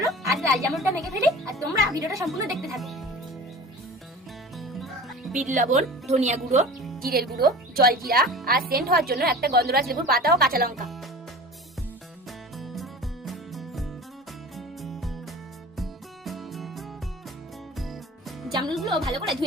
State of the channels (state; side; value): normal; both; correlation 0.37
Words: আজ লাল জামরুলটা মেখে ফেলি, আর তোমরা ভিডিওটা সম্পূর্ণ দেখতে থাকো। বিট লবণ, ধনিয়া গুঁড়ো, জিরের গুঁড়ো, জলজিরা আর সেন্ট হওয়ার জন্য একটা গন্ধরাজ লেবুর পাতা ও কাঁচা লঙ্কা। জামরুলগুলো ভালো করে